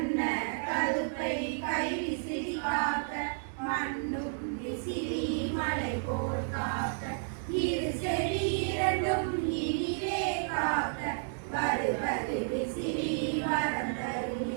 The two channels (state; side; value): silent; left; digital silence